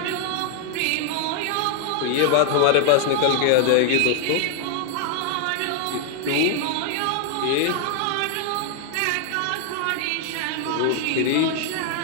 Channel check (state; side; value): different; both; correlation 0.00